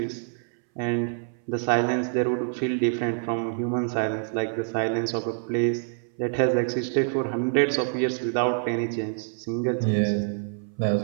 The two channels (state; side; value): silent; left; 61 dB below the other